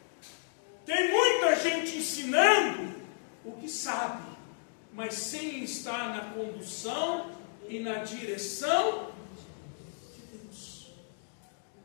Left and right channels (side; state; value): right; silent; digital silence